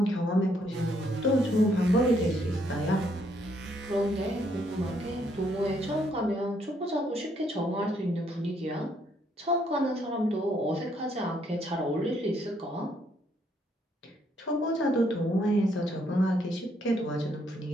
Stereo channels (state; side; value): normal; both; correlation 0.71